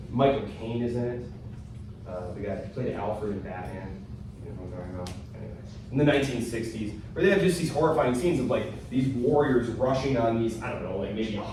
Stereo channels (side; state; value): both; identical; correlation 1.00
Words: Michael Caine is in it. The guy who played Alfred in Batman. You know what I'm talking about? Anyway. In the 1960s, where they have just these horrifying scenes of like these warriors rushing on these, I don't know, like maybe